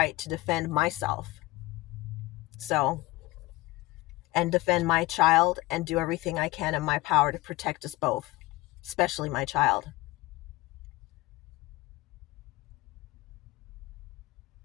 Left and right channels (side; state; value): right; quieter; 19.8 dB